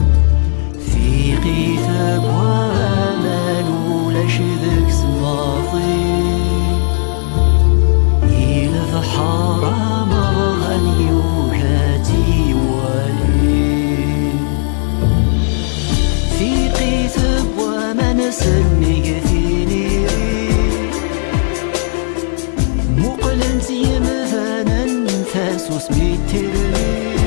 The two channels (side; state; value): right; silent; 59 dB below the other